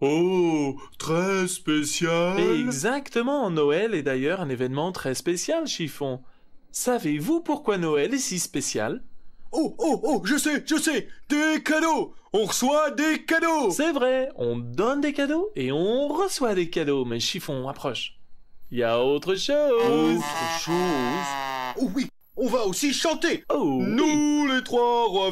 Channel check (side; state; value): both; identical; correlation 1.00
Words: très spécial. Exactement, Noël est d'ailleurs un événement très spécial, chiffon. Savez-vous pourquoi Noël est si spécial? Oh, je sais, des cadeaux. On reçoit des cadeaux. C'est vrai, on donne des cadeaux et on reçoit des cadeaux, mais chiffon, approche. Il y a autre chose. Autre chose. Oh oui, on va aussi chanter. Oh, oui. Nous, les trois rois